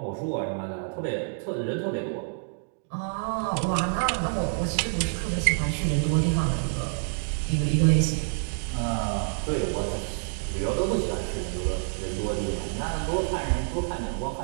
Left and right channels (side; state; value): left; silent; digital silence